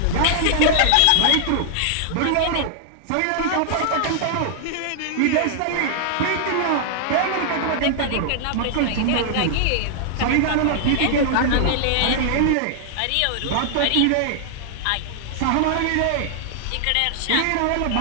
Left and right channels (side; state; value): both; different; correlation -0.01